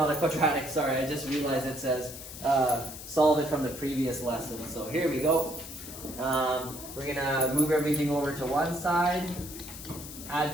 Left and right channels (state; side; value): noise; left; hiss, 12 dB below the sound